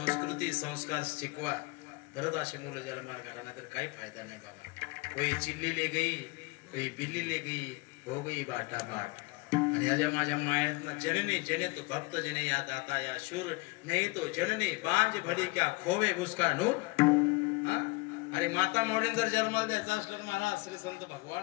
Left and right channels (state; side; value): quieter; right; 25.7 dB